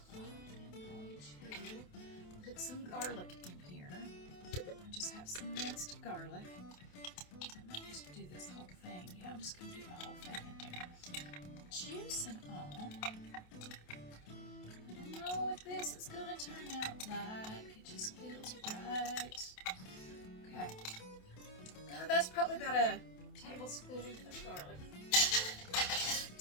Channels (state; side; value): late; right; 28 ms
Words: I'm going to put some garlic in here. I just have some minced garlic. I might just do this whole thing. Yeah, I'm just going to do the whole thing in there. Juice and all. I don't know what this is going to turn out like. It just feels right. Okay. That's probably about a tablespoon of garlic.